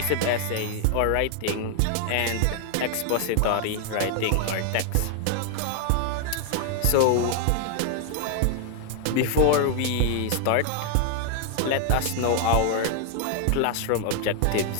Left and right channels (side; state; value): both; different; correlation 0.00